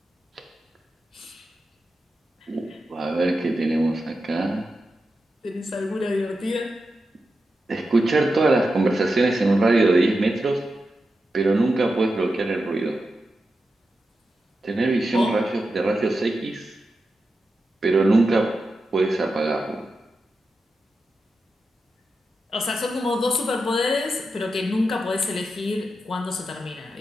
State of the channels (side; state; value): both; normal; correlation 0.89